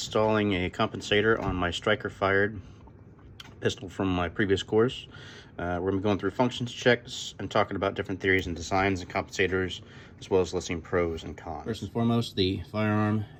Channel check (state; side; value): identical; both; correlation 1.00